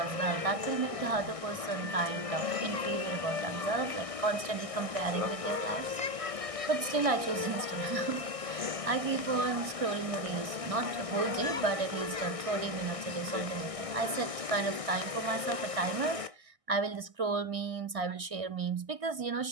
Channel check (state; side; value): late; left; 1.6 ms